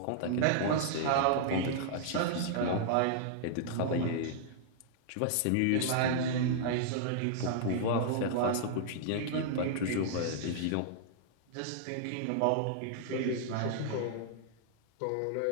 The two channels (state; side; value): different; both; correlation -0.01